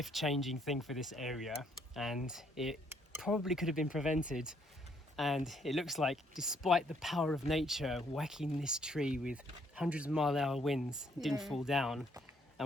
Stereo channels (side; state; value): both; normal; correlation 0.68